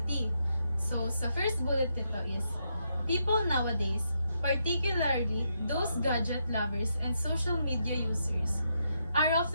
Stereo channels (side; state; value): both; inverted; correlation -0.80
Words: So, sa first bullet nito is, people nowadays, particularly those gadget lovers and social media users, are